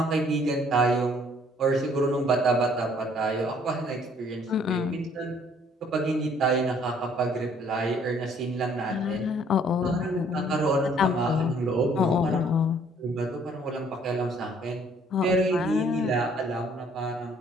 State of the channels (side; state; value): both; normal; correlation 0.61